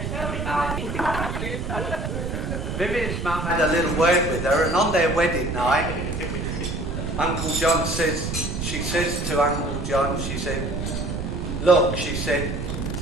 had a little word with her, and on their wedding night, Uncle John she says to Uncle John, she said, look, she said,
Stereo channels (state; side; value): noise; right; rumble, 4 dB below the sound